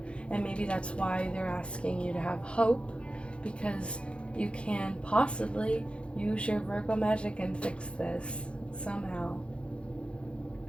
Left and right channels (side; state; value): right; late; 0.058 ms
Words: And maybe that's why they're asking you to have hope, because you can possibly use your Virgo magic and fix this somehow.